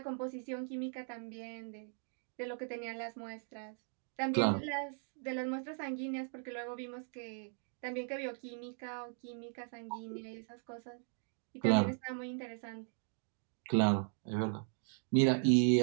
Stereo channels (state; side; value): silent; left; 52 dB below the other